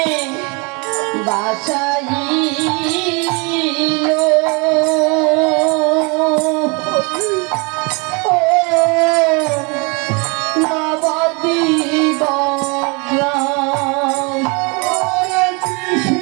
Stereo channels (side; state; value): left; quieter; 30.9 dB